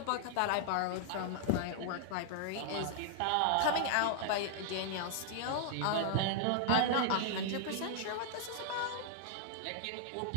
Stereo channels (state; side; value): different; both; correlation 0.00